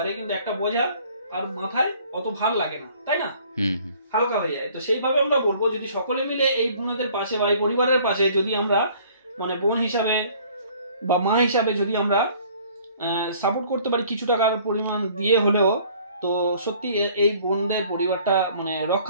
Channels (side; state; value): both; inverted; correlation -0.55